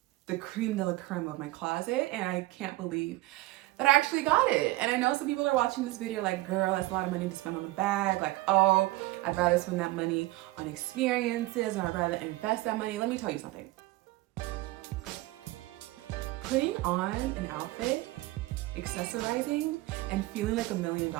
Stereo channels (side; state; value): left; quieter; 19.1 dB